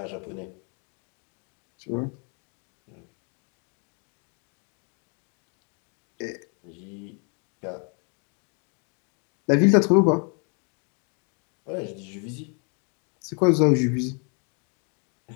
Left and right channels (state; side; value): quieter; right; 37.6 dB